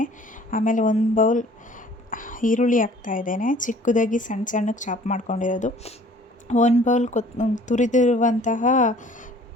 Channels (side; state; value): both; normal; correlation 0.52